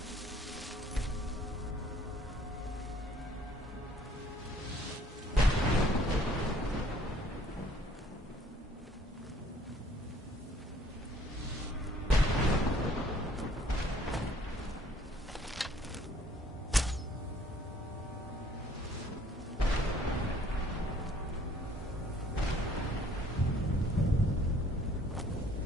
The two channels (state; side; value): normal; both; correlation 0.59